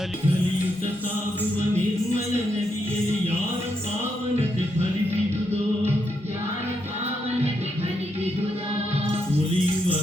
ಸಾಗುವ ನಿರ್ಮಲ ನದಿಯಲ್ಲಿ ಯಾರ ಪಾವನತೆ ಫಲಿಸಿದುದೋ ಉಳಿಯುವ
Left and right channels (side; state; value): both; normal; correlation 0.80